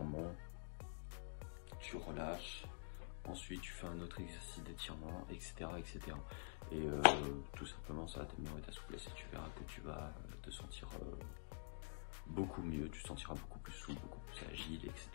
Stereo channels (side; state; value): right; silent; digital silence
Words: Tu relâches. Ensuite, tu fais un autre exercice d'étirement, etc., etc. Et tout simplement, ça va t'améliorer ta souplesse et tu verras que tu vas te sentir beaucoup mieux, tu te sentiras beaucoup plus souple, beaucoup plus agile,